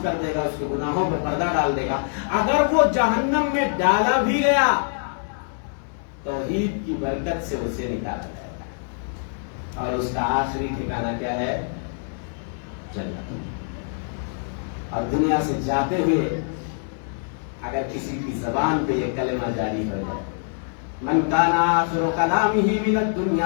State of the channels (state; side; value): silent; right; 62 dB below the other